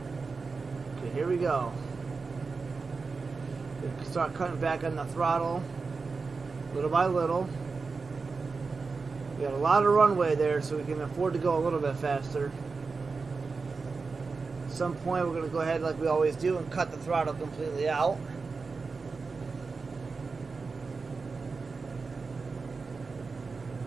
Okay, here we go. We can start cutting back on the throttle, little by little. We got a lot of runway there, so we can afford to go a little bit faster. At some point, we're going to go ahead like we always do and cut the throttle completely out.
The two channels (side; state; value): left; quieter; 4.5 dB